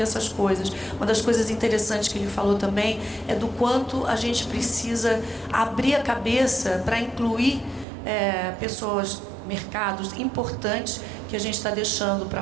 essas coisas. Uma das coisas interessantes que ele falou também é do quanto a gente precisa abrir a cabeça para incluir pessoas, mercados importantes que a gente está deixando para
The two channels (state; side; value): drops out; left; at 7.9 s